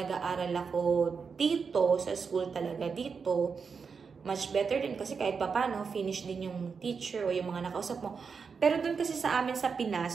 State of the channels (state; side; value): quieter; left; 5.6 dB